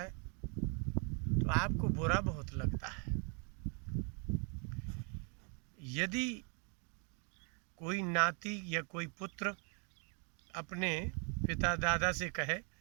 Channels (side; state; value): left; quieter; 37.1 dB